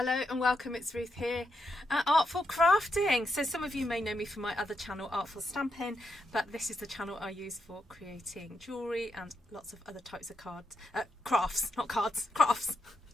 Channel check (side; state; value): both; normal; correlation 0.83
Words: and welcome, it's Ruth here at Artful Crafting. So some of you may know me from my other channel, Artful Stamping, but this is the channel I use for creating jewellery and lots of other types of crafts, not cards, crafts.